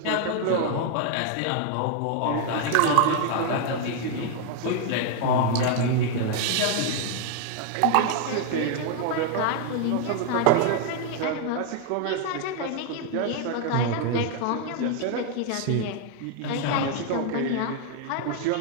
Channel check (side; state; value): both; different; correlation 0.00